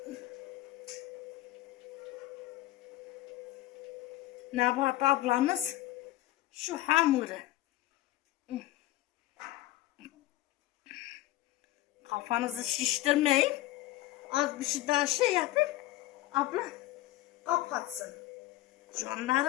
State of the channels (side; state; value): right; quieter; 16.2 dB